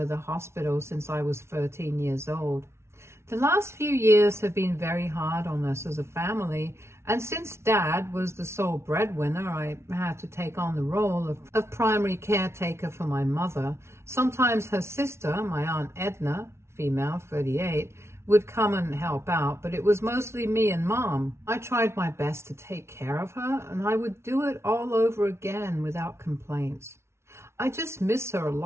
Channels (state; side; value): late; left; 0.13 ms